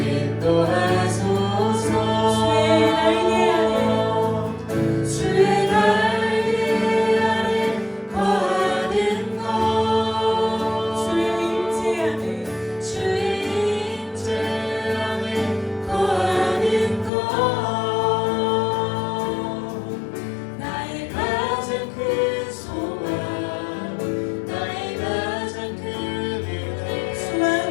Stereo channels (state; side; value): drops out; right; at 17.1 s